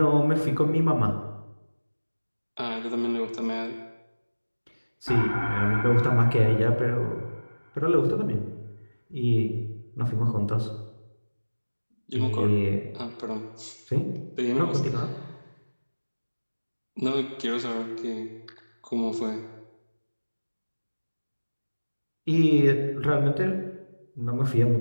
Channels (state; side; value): inverted; both; correlation -1.00